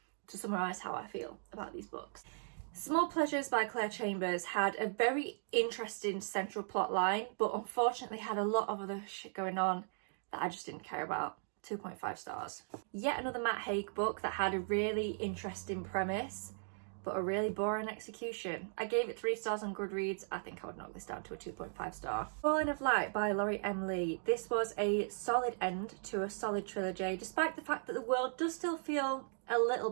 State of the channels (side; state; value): left; silent; digital silence